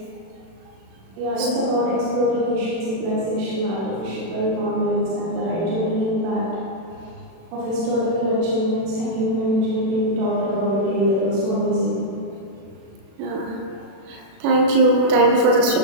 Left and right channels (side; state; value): left; late; 36 ms